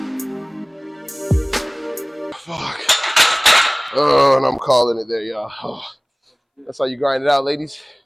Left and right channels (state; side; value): identical; both; correlation 1.00